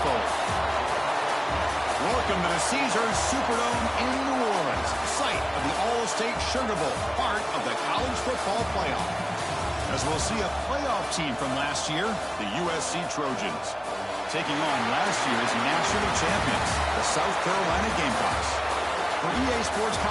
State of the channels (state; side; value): identical; both; correlation 1.00